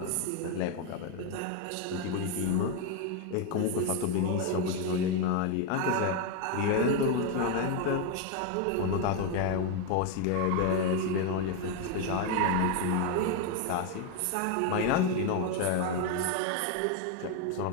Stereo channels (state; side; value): different; both; correlation 0.02